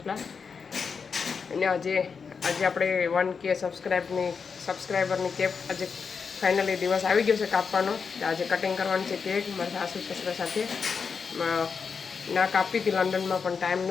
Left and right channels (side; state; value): right; quieter; 5.7 dB